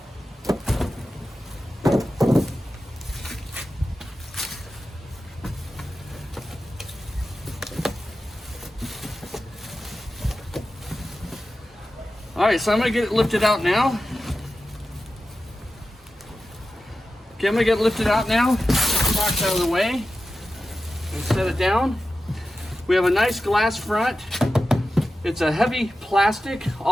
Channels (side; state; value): both; normal; correlation 0.93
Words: All right, so I'm gonna get it lifted out now. Okay, I'm gonna get it lifted out now. Get the box out of the way and set it down. We have a nice glass front. It's a heavy plastic